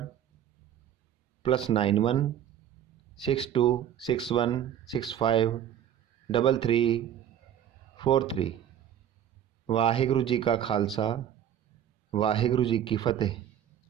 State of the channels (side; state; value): left; quieter; 10.1 dB